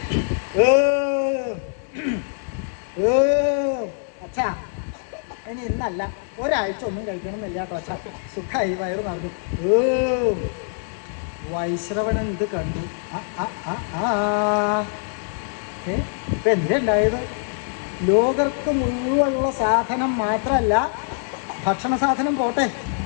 അച്ഛാ, ഇനി ഇന്നല്ല, ഒരാഴ്ച ഒന്നും കഴിക്കണമെന്നില്ല കേട്ടോ അച്ഛാ. സുഖമായി വയറ് പറഞ്ഞു. വൈശ്രവണൻ ഇത് കണ്ടു. എന്തുണ്ടായത്? ലോകർക്ക് മുഴുവനുള്ള സാധനം മാത്രമല്ല, ഭക്ഷണ സാധനം പോട്ടെ,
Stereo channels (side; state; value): right; silent; 63 dB below the other